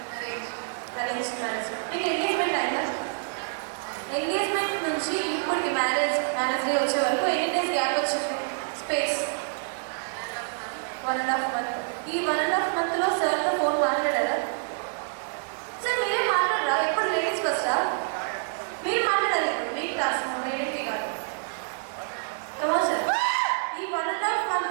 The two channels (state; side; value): silent; left; digital silence